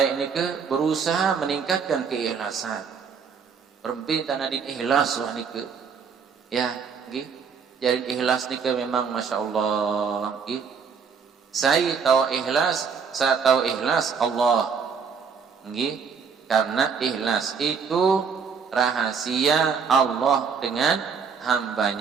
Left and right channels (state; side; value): quieter; left; 6.1 dB